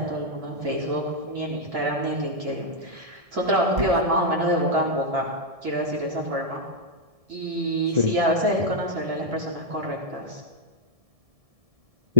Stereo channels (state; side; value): late; left; 1.7 ms